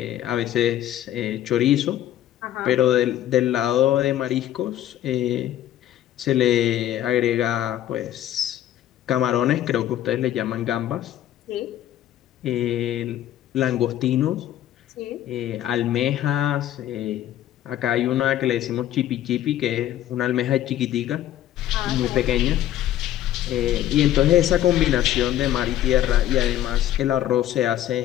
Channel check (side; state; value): right; quieter; 12.4 dB